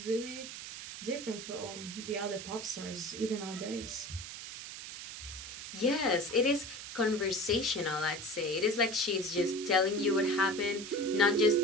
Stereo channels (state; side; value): noise; right; hiss, 10 dB below the sound